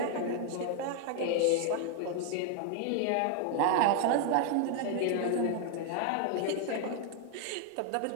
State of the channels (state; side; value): different; both; correlation 0.00